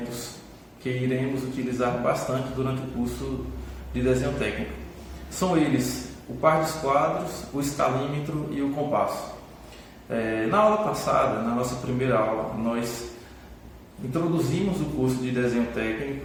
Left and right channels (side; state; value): both; identical; correlation 1.00